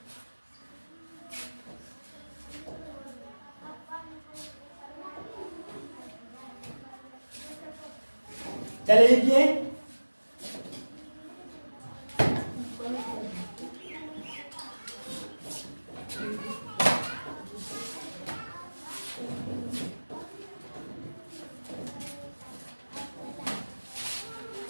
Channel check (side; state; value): both; inverted; correlation -1.00